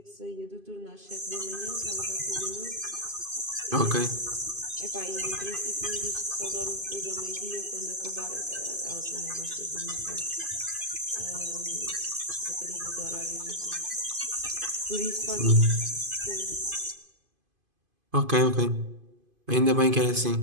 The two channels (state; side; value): late; left; 2.5 ms